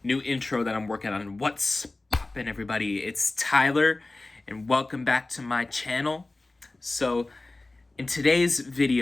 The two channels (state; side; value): quieter; right; 3.1 dB